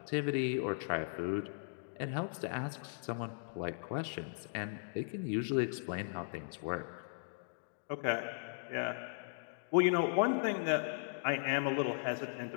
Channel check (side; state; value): right; silent; digital silence